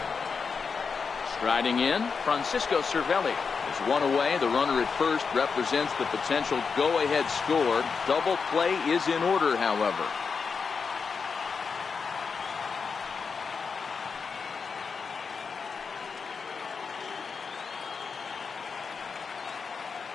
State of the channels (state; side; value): quieter; right; 5.4 dB